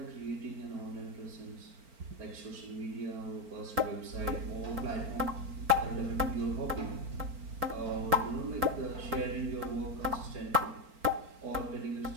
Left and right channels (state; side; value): late; left; 4.4 ms